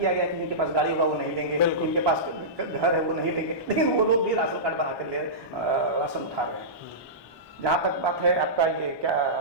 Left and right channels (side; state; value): left; late; 1.2 ms